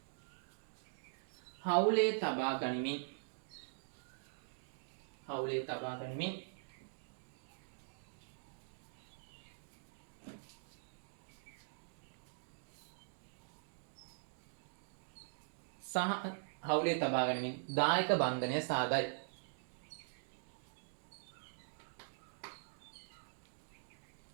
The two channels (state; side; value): silent; left; digital silence